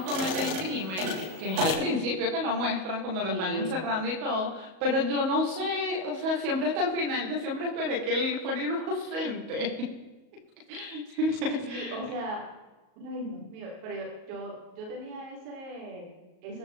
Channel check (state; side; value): late; left; 38 ms